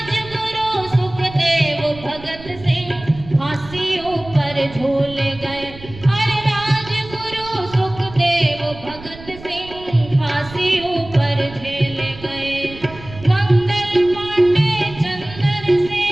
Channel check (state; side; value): noise; right; rumble, 17 dB below the sound